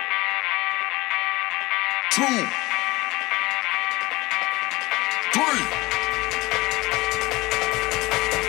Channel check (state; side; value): quieter; right; 21.2 dB